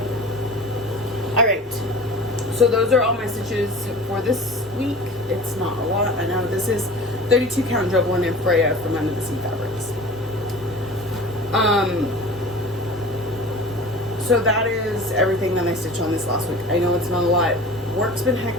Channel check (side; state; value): both; normal; correlation 0.39